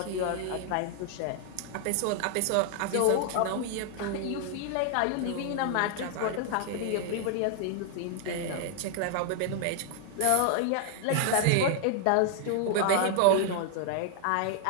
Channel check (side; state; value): both; different; correlation 0.00